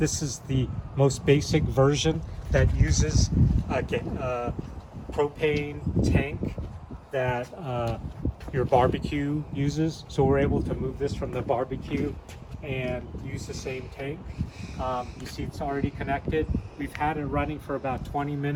is the most basic version that uses a propane tank that your barbecue uses. So we're able to move this from the barbecue and use the same tank. You see it's already connected. We've had it running for about 20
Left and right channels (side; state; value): both; identical; correlation 1.00